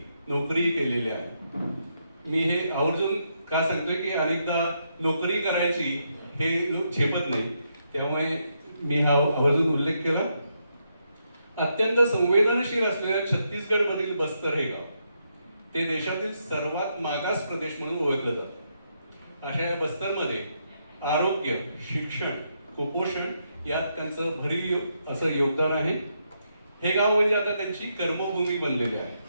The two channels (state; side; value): inverted; both; correlation -0.79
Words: नोकरी केलेली आहे. मी हे आवर्जून का सांगतोय की अनेकदा नोकरी करायची हे लोक झेपत नाही, त्यामुळे मी हा आवर्जून उल्लेख केला. अत्यंत संवेदनशील असलेल्या छत्तीसगड मधील बस्तर हे गाव ते देशातील सर्वात मागास प्रदेश म्हणून ओळखलं जातं. अशा या बस्तरमध्ये आरोग्य, शिक्षण, कुपोषण यात त्यांचं भरीव असं योगदान आहे. हे गाव म्हणजे आता त्यांची कर्मभूमी बनलेली आहे.